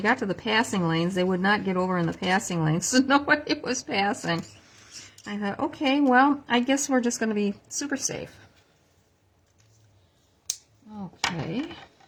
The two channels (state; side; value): identical; both; correlation 1.00